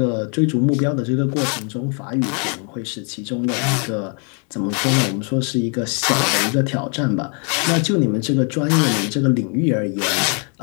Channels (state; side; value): quieter; right; 38.5 dB